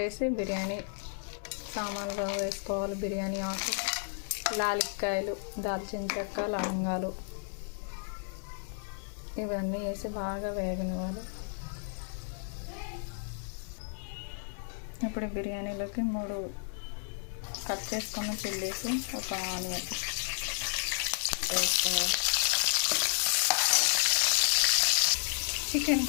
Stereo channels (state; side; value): silent; right; 56 dB below the other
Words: బిర్యానీ సామాన్లు వేసుకోవాలి. బిర్యానీ ఆకు, లాలిక్కాయలు, దాల్చిన చెక్క, లవంగాలు ఇవన్నీ వేసి బాగా వేగనివ్వాలి. ఇప్పుడు బిర్యానీలోకి 3 కట్ చేసుకున్న చిల్లీస్, ఒక ఆనియన్ వేసుకోవాలి. చికెన్